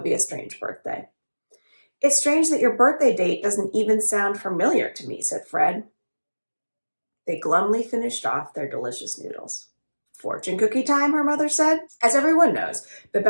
be a strange birthday." "It's strange that your birthday date doesn't even sound familiar to me," said Fred. They glumly finished off their delicious noodles. "Fortune cookie time," her mother said. As everyone knows, the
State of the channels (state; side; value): inverted; both; correlation -1.00